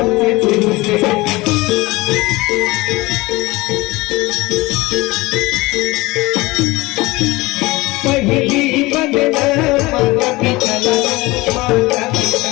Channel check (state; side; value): quieter; right; 21.4 dB